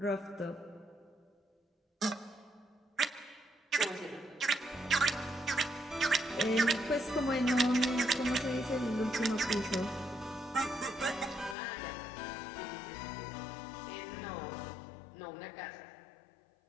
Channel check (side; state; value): right; drops out; at 11.6 s